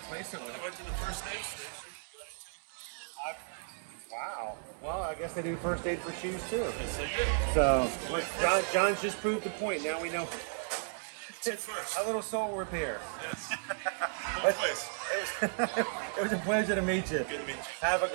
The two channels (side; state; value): left; silent; 55 dB below the other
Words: it with. I went to the first aid station. Wow. Well, I guess they do first aid for shoes too. Yes, they did. So, John's just proved the point. Now we know. First. A little soul repair. Yes. No place. It was a pleasure to meet you. Good to meet you. Have a